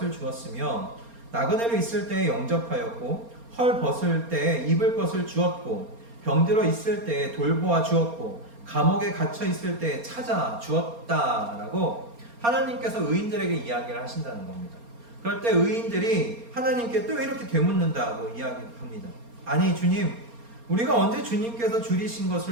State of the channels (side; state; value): left; late; 4.3 ms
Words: 주었으며 나그네로 있을 때 영접하였고 헐 벗을 때 입을 것을 주었고 병들어 있을 때 돌보아 주었고 감옥에 갇혀 있을 때 찾아 주었다라고 하나님께서 의인들에게 이야기를 하신다는 겁니다. 그럴 때 의인들이 하나님께 또 이렇게 되묻는다고 이야기합니다. 아니 주님, 우리가 언제 주님께서 줄이신